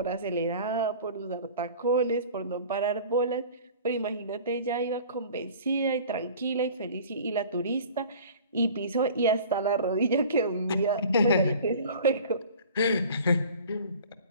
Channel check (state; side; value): inverted; both; correlation -0.44